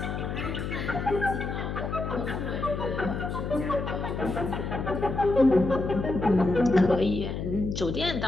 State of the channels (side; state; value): left; noise; hum, 4 dB below the sound